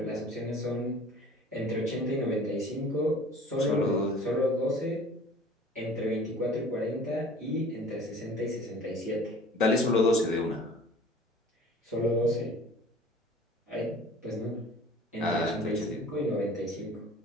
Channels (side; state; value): both; normal; correlation 0.46